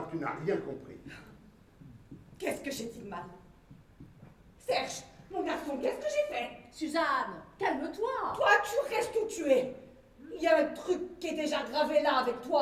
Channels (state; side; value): identical; both; correlation 1.00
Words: que tu n'as rien compris. Qu'est-ce que j'ai dit de mal? Serge, mon garçon, qu'est-ce que j'ai fait? Suzanne, calme-toi. Toi, tu restes où tu es. Il y a un truc qui est déjà gravé là avec